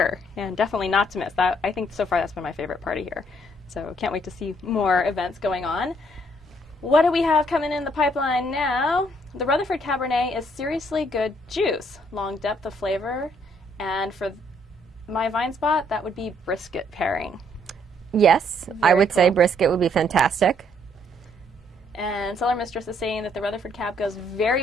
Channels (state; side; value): normal; both; correlation 0.68